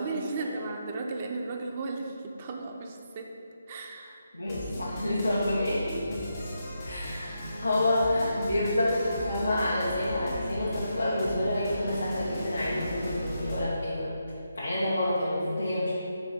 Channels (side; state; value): both; inverted; correlation -0.83